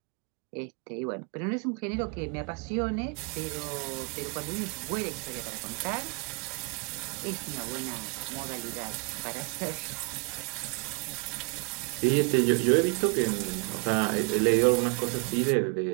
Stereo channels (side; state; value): left; quieter; 34.3 dB